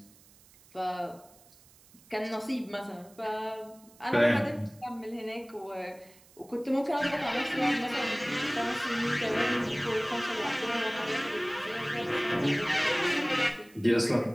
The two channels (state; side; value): noise; right; hiss, 26 dB below the sound